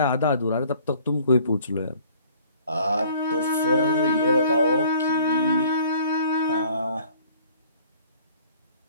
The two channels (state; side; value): inverted; both; correlation -0.55